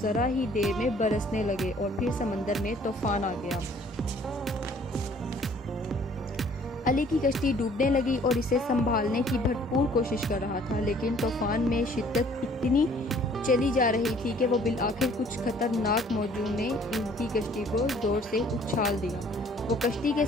ذرا ہی دیر میں برسنے لگے اور پھر سمندر میں طوفان آ گیا۔ علی کی کشتی ڈوبنے لگی اور اسے سنبھالنے کی بھرپور کوشش کر رہا تھا، لیکن طوفان میں شدت اتنی چلی جا رہی تھی کہ وہ بالآخر کچھ خطرناک موجوں نے ان کی کشتی کو زور سے اچھال دیا۔ وہ کشتی کے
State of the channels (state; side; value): normal; both; correlation 0.57